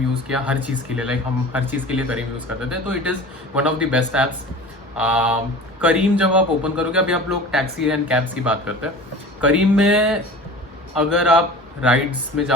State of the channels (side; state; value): both; normal; correlation 0.38